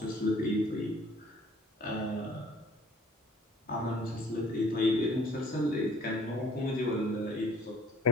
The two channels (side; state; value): both; normal; correlation 0.56